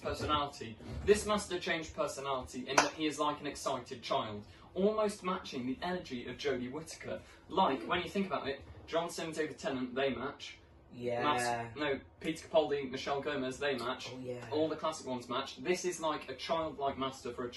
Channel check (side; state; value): both; identical; correlation 1.00